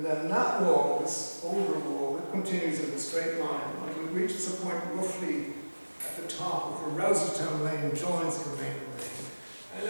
then that wall, this older wall, it continues in a straight line until it reaches a point roughly at the top of where Rouserstown Lane joins Kilmainham Lane. And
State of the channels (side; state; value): both; inverted; correlation -1.00